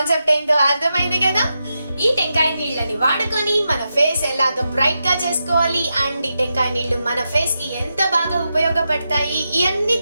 ఏంటో అర్థమైంది కదా. ఈ టెంకాయ నీళ్ళని వాడుకొని మన ఫేస్ ఎలాగ బ్రైట్ గా చేసుకోవాలి అండ్ ఈ టెంకాయ నీళ్లు మన ఫేస్ కి ఎంత బాగా ఉపయోగపడతాయి ఇవన్నీ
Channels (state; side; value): inverted; both; correlation -0.88